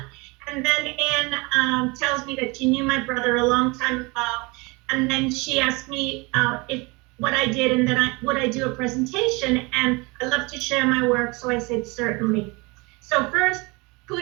and then Anne tells me that she knew my brother a long time ago. And then she asked me if what I did, and then would I do a presentation, and I love to share my work, so I said certainly. So first,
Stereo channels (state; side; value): quieter; left; 26.5 dB